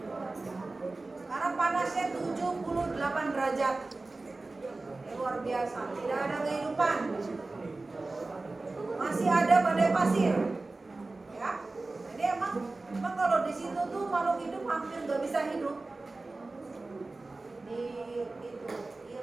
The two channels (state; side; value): quieter; left; 3.3 dB